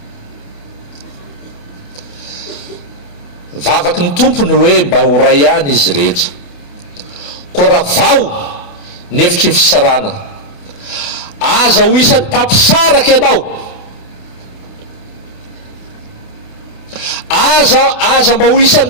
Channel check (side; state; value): right; late; 28 ms